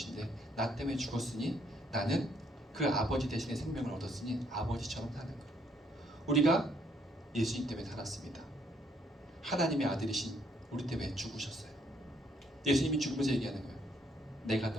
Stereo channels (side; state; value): both; normal; correlation 0.69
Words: 나 때문에 죽었으니 나는 그 아버지 대신에 생명을 얻었으니 아버지처럼 사는 거예요. 우리가 예수님 때문에 살았습니다. 하나님의 아들이신 우리 때문에 죽으셨어요. 예수님이 죽으면서 얘기하는 거예요. 내가